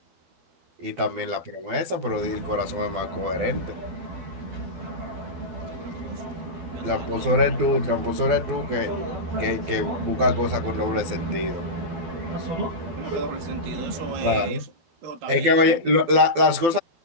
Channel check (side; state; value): left; late; 12 ms